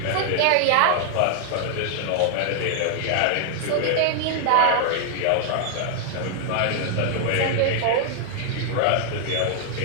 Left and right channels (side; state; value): both; different; correlation 0.00